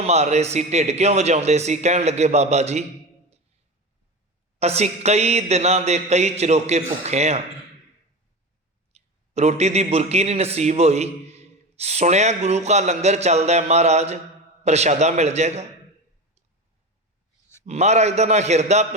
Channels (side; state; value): both; normal; correlation 0.25